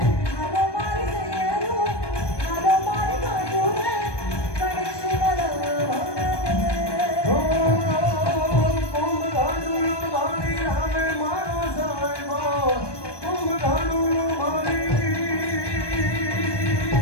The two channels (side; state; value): right; late; 1.2 ms